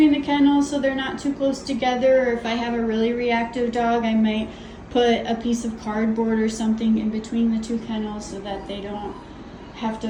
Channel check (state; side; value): identical; both; correlation 1.00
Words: the kennels so they're not too close together. Or if I have a really reactive dog, I might put a piece of cardboard or something in between the two kennels so that they don't have